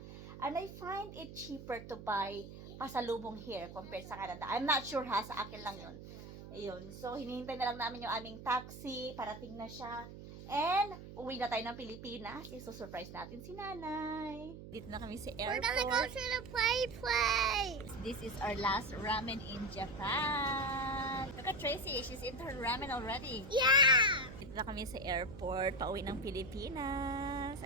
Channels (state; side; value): noise; right; hum, 13 dB below the sound